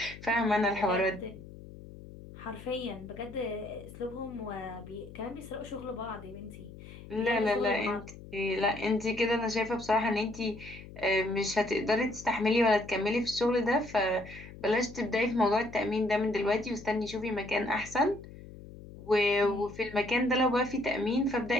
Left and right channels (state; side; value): noise; left; hum, 16 dB below the sound